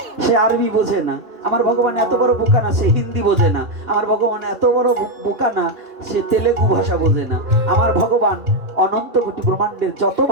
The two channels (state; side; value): late; left; 2.4 ms